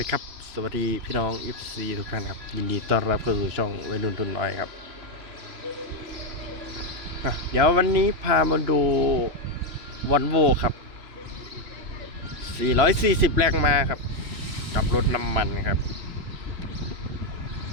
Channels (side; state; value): left; late; 2.9 ms